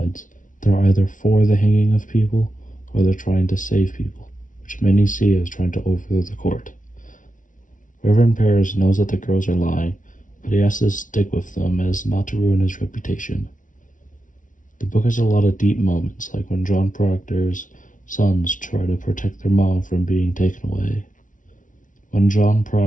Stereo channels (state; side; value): late; right; 0.38 ms